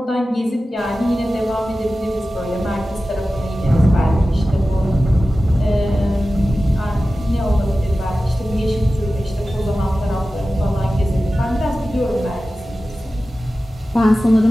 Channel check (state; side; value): normal; both; correlation 0.95